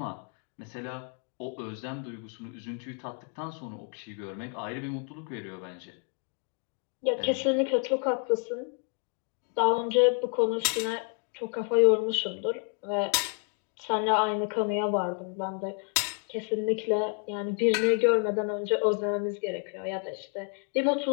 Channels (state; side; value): quieter; right; 40.0 dB